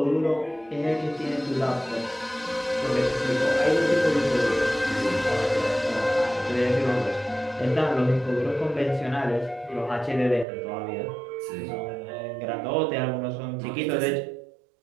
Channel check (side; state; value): left; drops out; at 10.5 s